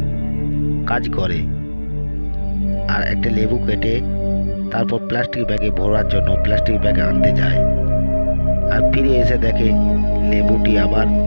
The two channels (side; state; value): both; inverted; correlation -1.00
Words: কাজ করে আর একটা লেবু কেটে তারপর প্লাস্টিক ব্যাগে ভরার জন্য প্লাস্টিক ব্যাগে আনতে যায়, আর ফিরে এসে দেখে লেবুটি আবার